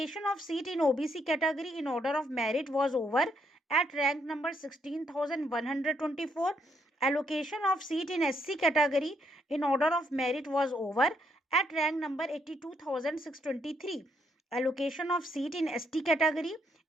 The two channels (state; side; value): normal; both; correlation 0.74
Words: of seat in OBC category in order of merit was over at rank number 16,124. Allocation of seat in SC category in order of merit was over at rank number 82,623. Allocation of seat in ST category